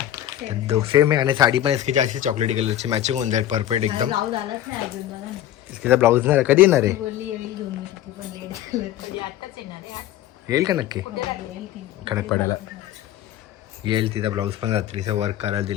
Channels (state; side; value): quieter; right; 12.5 dB